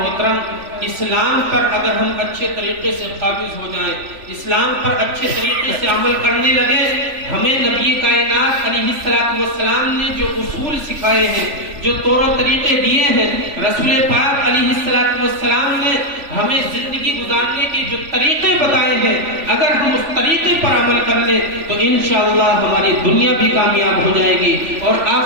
اسلام پر اگر ہم اچھے طریقے سے قابض ہو جائیں، اسلام پر اچھے طریقے سے عمل کرنے لگے، ہمیں نبی کائنات علیہ السلام نے جو اصول سکھائے ہیں، جو طور و طریقے دیے ہیں، رسول پاک علیہ السلام نے ہمیں زندگی گزارنے کے جو طریقے بتائے ہیں، اگر ہم اس طریقے پر عمل کر لیں تو انشاءاللہ ہماری دنیا بھی کامیاب ہو جائے گی اور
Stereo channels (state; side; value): late; left; 3.5 ms